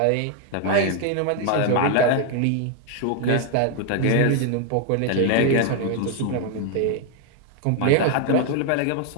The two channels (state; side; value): different; both; correlation 0.00